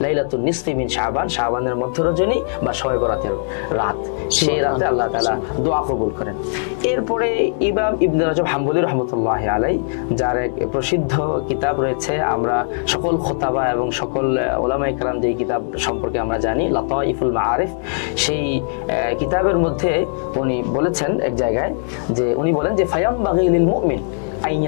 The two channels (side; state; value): right; silent; digital silence